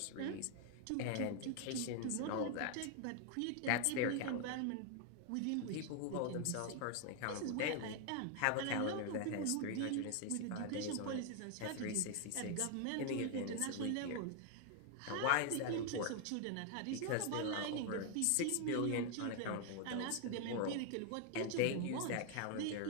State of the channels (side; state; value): both; different; correlation 0.00